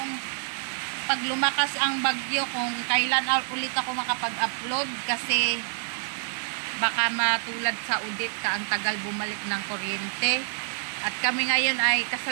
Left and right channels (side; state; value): left; silent; digital silence